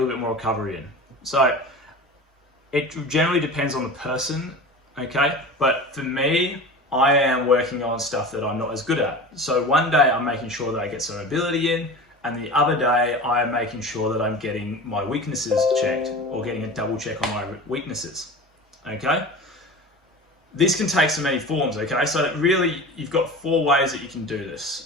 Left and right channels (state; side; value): normal; both; correlation 0.33